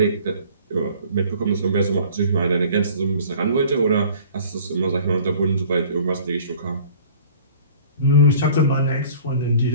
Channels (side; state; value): both; inverted; correlation -0.49